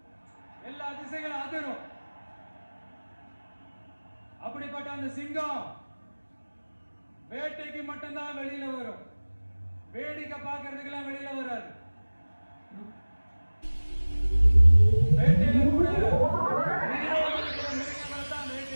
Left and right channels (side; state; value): both; inverted; correlation -1.00